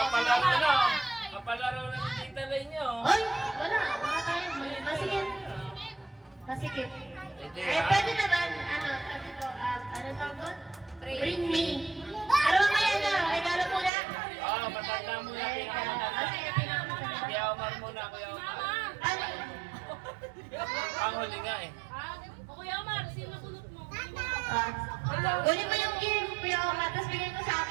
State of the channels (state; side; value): drops out; left; at 13.9 s